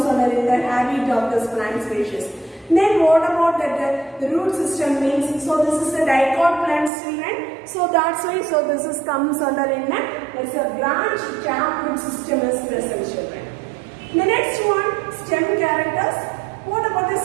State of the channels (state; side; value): drops out; left; at 6.9 s